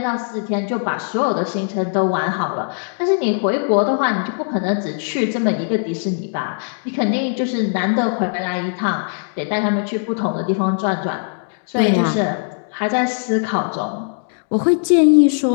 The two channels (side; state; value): right; silent; digital silence